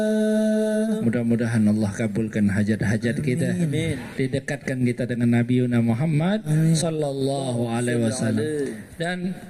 Mudah-mudahan Allah kabulkan hajat-hajat kita, didekatkan kita dengan Nabi Muhammad sallallahu alaihi wasallam. Dan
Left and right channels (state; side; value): identical; both; correlation 1.00